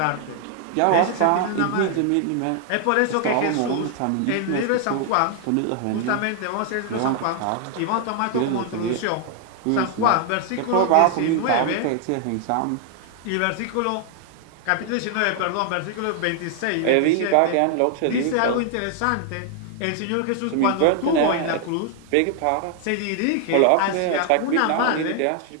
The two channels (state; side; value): different; both; correlation 0.00